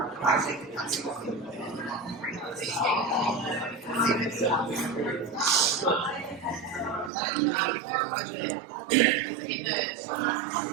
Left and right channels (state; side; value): drops out; left; at 7.1 s